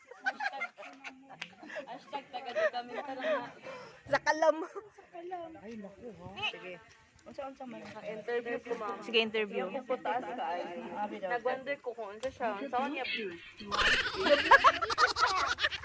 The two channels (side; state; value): both; identical; correlation 1.00